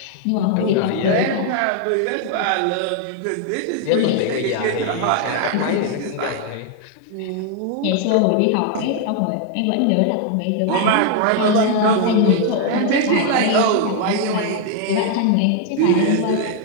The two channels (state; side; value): different; both; correlation 0.00